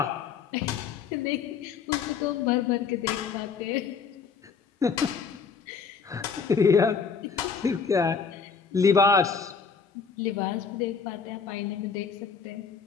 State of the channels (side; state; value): right; quieter; 5.9 dB